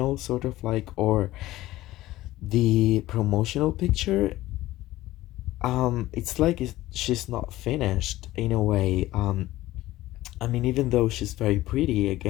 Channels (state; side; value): quieter; right; 16.4 dB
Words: sort of like or the promotional picture. It's like she's not finished in a way. I mean, even though she's very pretty,